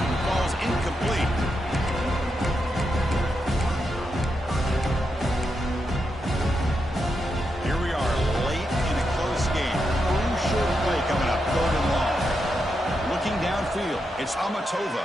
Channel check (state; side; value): normal; both; correlation 0.85